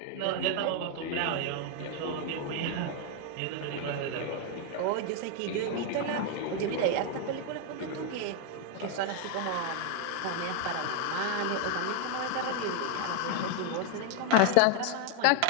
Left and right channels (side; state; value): both; different; correlation 0.00